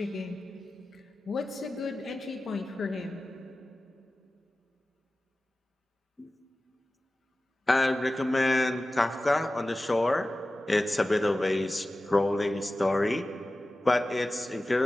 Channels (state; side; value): normal; both; correlation 0.96